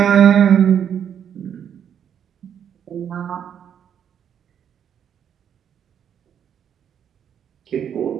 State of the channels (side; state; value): left; quieter; 8.7 dB